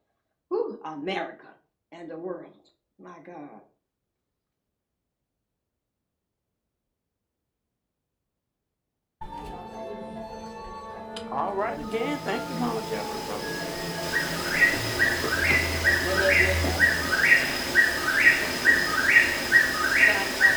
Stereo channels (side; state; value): both; identical; correlation 1.00